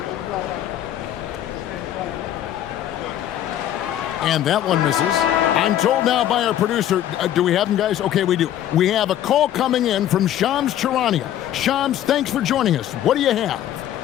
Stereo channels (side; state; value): right; quieter; 11.6 dB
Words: And that one misses. I'm told now by our producer, do we have them, guys? Okay, we do. We have a call coming in from Shams Charania. Shams, thanks for joining us. What do you have?